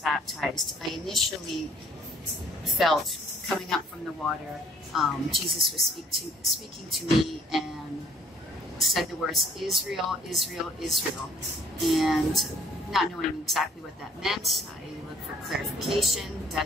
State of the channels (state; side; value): normal; both; correlation 0.59